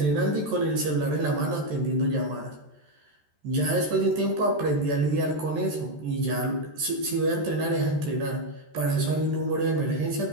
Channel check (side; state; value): left; late; 13 ms